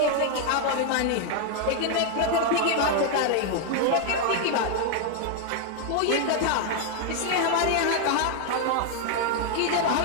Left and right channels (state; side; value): different; both; correlation 0.00